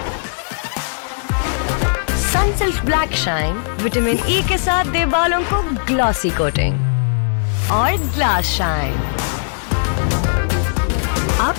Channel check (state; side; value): silent; right; 67 dB below the other